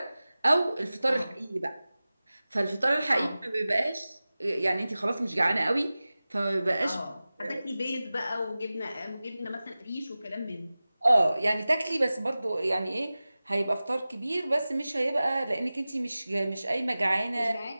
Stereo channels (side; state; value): both; inverted; correlation -0.97